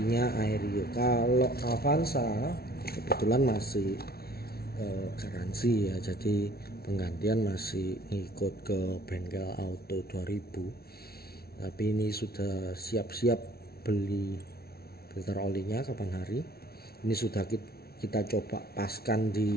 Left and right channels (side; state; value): right; late; 0.44 ms